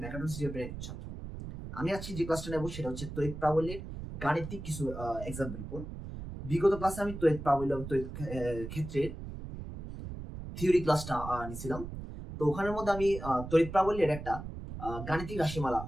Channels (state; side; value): noise; right; rumble, 9 dB below the sound